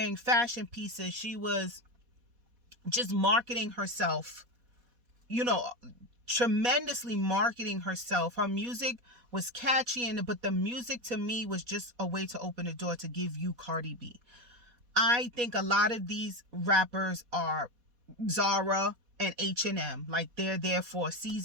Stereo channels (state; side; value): late; left; 4.1 ms